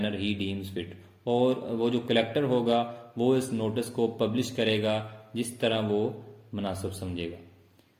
he deems fit. اور وہ جو کلیکٹر ہوگا وہ اس نوٹس کو پبلش کرے گا جس طرح وہ مناسب سمجھے گا.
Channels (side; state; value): both; identical; correlation 1.00